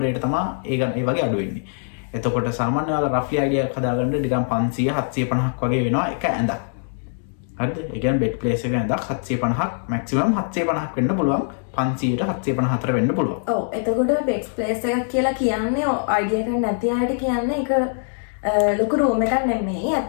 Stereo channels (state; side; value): silent; right; digital silence